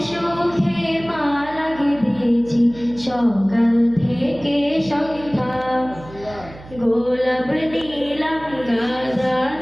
সুখে মালা গেঁথেছি সকাল থেকে সন্ধ্যা গোলাপ নিলাম গাধা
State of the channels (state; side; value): noise; right; hum, 18 dB below the sound